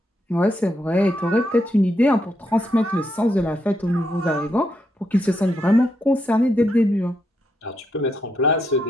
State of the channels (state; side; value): normal; both; correlation 0.80